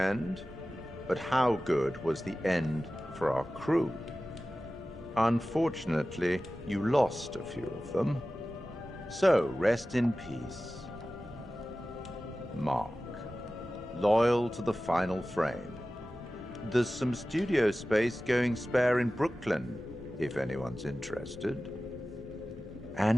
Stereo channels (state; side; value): normal; both; correlation 0.96